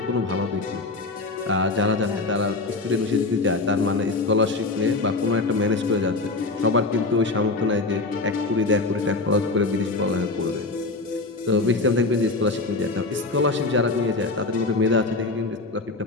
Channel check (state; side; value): quieter; right; 3.4 dB